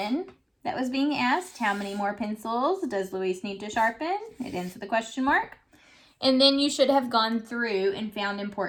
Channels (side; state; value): both; identical; correlation 1.00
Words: that was being asked. How many more pencils does Luis need to sharpen? It ends with a question mark. And then you should have gone through and found